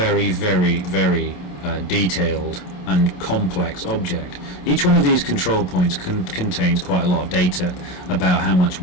very, very detailed and complex object. Each one of these control points contains quite a lot of data about how much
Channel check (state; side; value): late; right; 28 ms